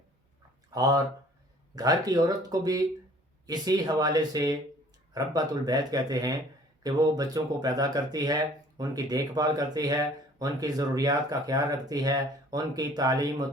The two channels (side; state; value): both; normal; correlation 0.53